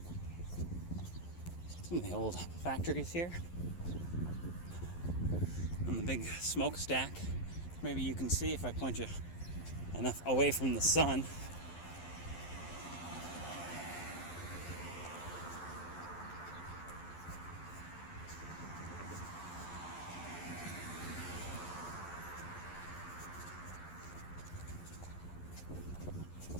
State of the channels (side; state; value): right; late; 11 ms